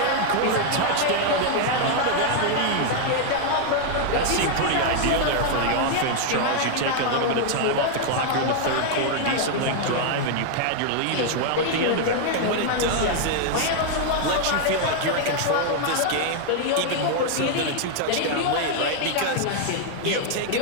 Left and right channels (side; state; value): both; different; correlation 0.00